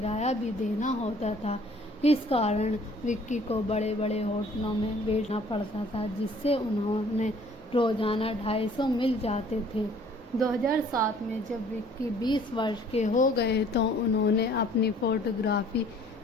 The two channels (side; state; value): both; normal; correlation 0.56